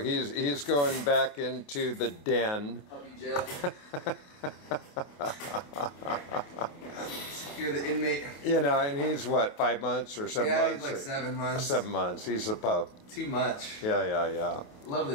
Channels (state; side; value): late; right; 28 ms